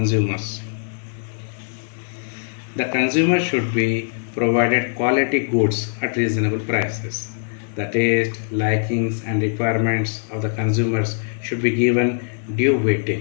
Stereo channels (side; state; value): right; silent; digital silence